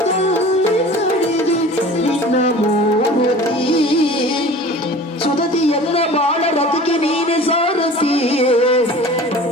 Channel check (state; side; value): normal; both; correlation 0.42